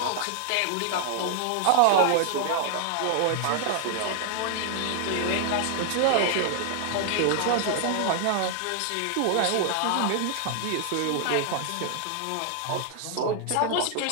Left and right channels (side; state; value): both; different; correlation 0.00